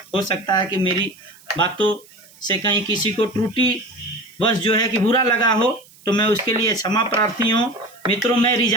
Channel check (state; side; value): noise; right; hiss, 26 dB below the sound